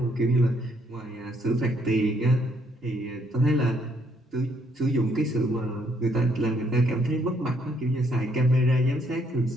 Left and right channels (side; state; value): both; normal; correlation 0.69